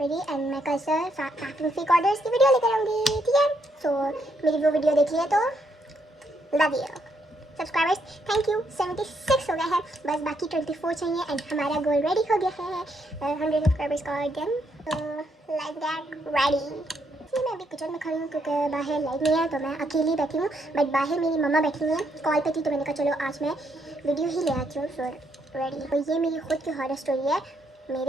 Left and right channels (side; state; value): both; normal; correlation 0.75